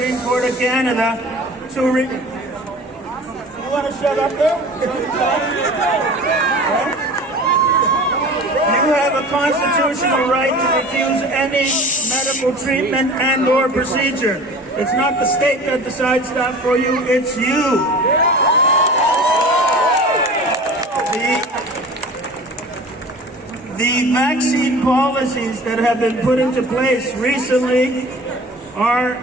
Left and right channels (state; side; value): normal; both; correlation 0.40